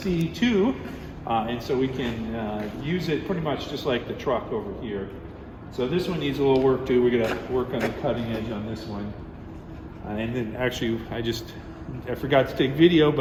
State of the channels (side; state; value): both; identical; correlation 1.00